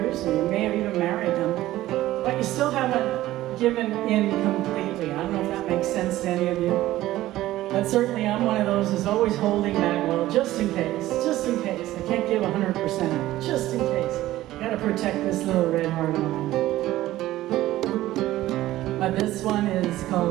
and you may have even married them, but you still haven't given in completely. I don't know if that makes sense to any of you. But certainly I'm one of those who's always holding back, well, just in case, just in case. I can't give 100%, just in case. Gotta protect this little red heart of mine. But this one is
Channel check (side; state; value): left; quieter; 15.5 dB